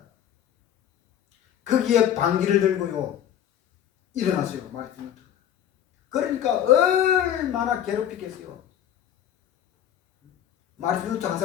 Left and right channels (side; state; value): right; quieter; 10.4 dB